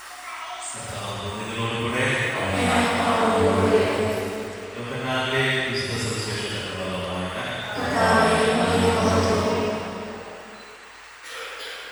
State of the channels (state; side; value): identical; both; correlation 1.00